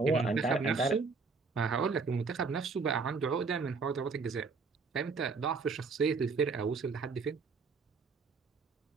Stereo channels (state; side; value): quieter; left; 4.7 dB